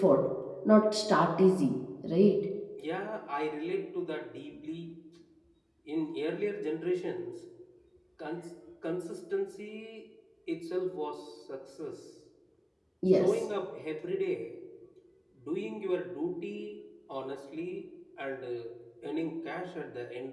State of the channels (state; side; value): identical; both; correlation 1.00